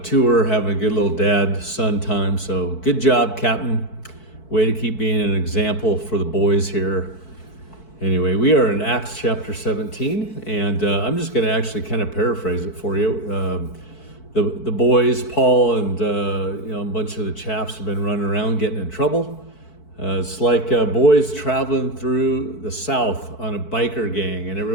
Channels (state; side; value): late; right; 4.6 ms